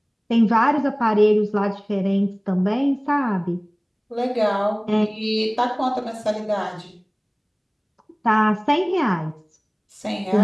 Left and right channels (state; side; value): identical; both; correlation 1.00